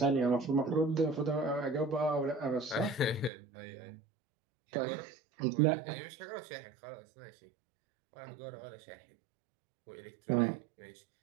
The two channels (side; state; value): left; drops out; at 3.3 s